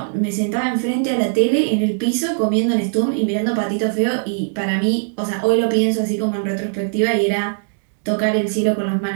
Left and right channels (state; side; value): silent; left; digital silence